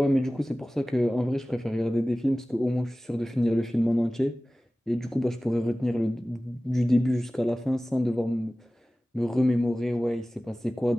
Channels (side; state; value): both; normal; correlation 0.97